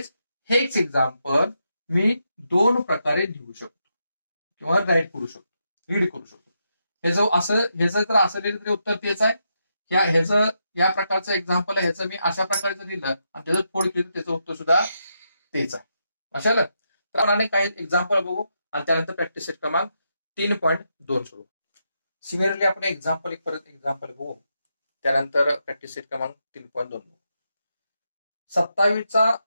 हेच एक्झाम्पल मी 2 प्रकारे लिहू शकतो किंवा रीड करू शकतो. हे जर असं लिहिलं तरी उत्तर तेच आहे. या प्रकारचं एक्झाम्पल आहे ह्याचं मी अशा प्रकारे जर लिहिलं आणि त्याचं फोड केलं त्याचं उत्तर सुद्धा तेच आहे. अशाला तर आपण काही एक्झाम्पल बघू आणि त्यानंतर प्रॅक्टिस सेट क्रमांक 3.2 सोडू. सिमिलरली आपण परत एक्झाम्पल बघू त्यानंतर प्रॅक्टिस सेट क्रमांक 3.2 बघू. 27चा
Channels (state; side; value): inverted; both; correlation -0.83